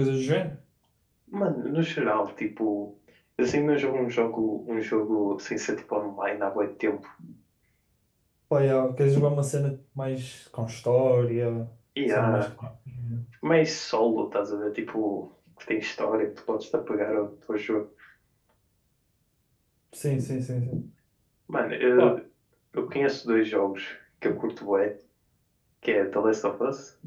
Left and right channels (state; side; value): identical; both; correlation 1.00